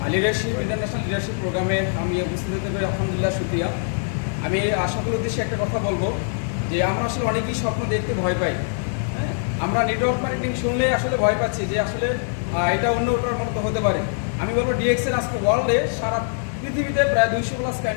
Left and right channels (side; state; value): right; silent; digital silence